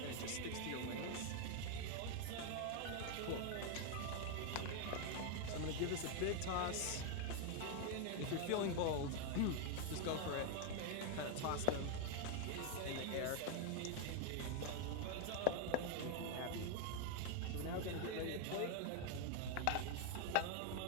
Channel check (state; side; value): different; both; correlation 0.01